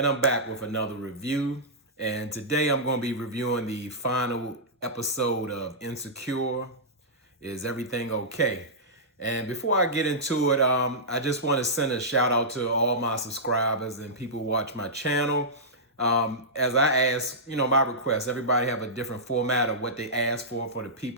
I'm back with another review. And today I'm going to be reviewing the final episode of Insecure. Is Everything Okay? And before I get into it, I just want to send a shout out to all my subscribers and people who watch my channel. As I ask, my requests, everybody have a different format of what they ask for the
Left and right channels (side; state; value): both; normal; correlation -0.14